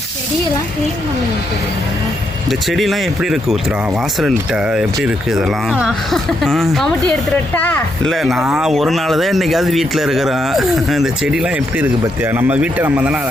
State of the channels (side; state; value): both; normal; correlation 0.79